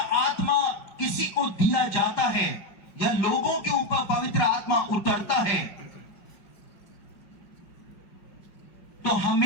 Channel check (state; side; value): late; right; 5.4 ms